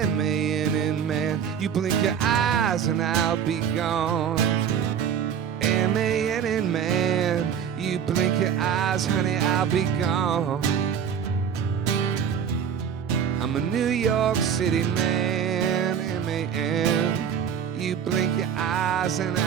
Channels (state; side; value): quieter; left; 7.9 dB